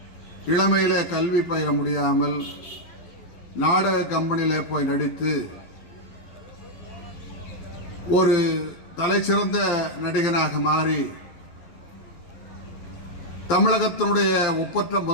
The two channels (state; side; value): late; right; 12 ms